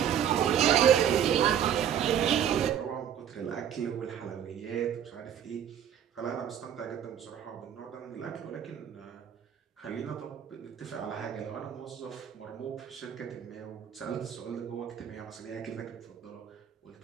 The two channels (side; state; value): left; quieter; 9.4 dB